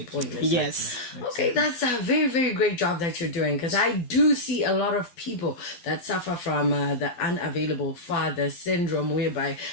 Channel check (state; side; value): late; right; 12 ms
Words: Yes. Okay, that's a very, very great job that you're doing, because I do see a lot of people that suffer from the unavailable father syndrome, whereby